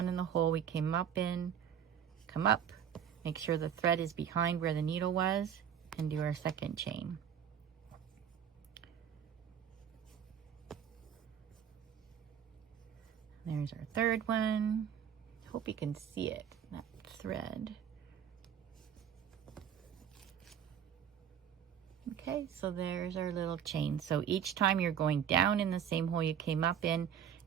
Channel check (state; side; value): quieter; left; 8.7 dB